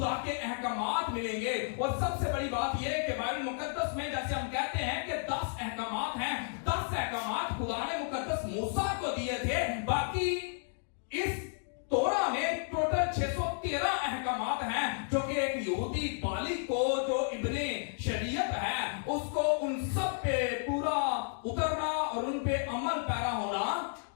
के अहकामात मिलेंगे। और सबसे बड़ी बात यह कि बाइबल मुकद्दस में जैसे हम कहते हैं कि 10 अहकामात हैं, 10 अहकामात खुदा ने मुकद्दस मूसा को दिए थे। बाकी इस तोरा में टोटल 613 अहकामात हैं जो कि एक यहूदी बालिग को, जो इब्ने शरीयत है, उसको उन सब पे पूरा उतरना और उन पे अमल पैरा होना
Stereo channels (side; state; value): right; silent; digital silence